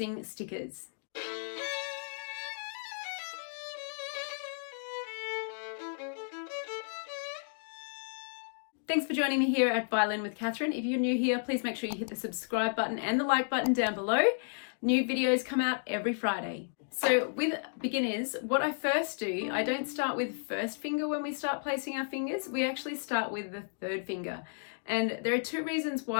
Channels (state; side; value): silent; right; digital silence